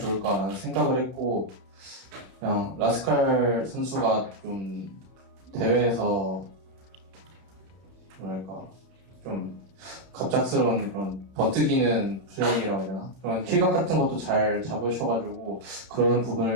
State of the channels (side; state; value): left; late; 31 ms